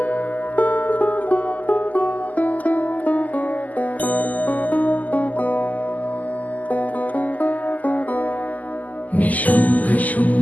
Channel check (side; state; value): right; late; 0.078 ms